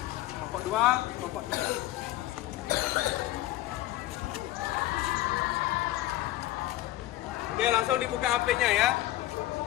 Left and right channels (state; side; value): quieter; right; 15.6 dB